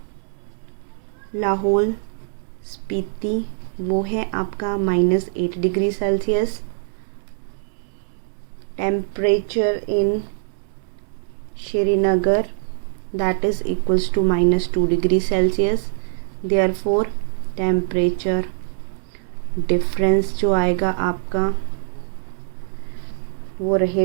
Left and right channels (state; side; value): silent; left; 64 dB below the other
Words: लाहौल स्पीति, वो है आपका -8 degree Celsius. Temperature in Srinagar that is equals to -2 degree Celsius. Therefore temperature difference जो आएगा आपका वो